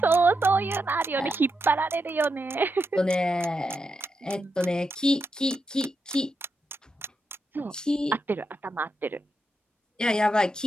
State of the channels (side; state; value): both; normal; correlation 0.85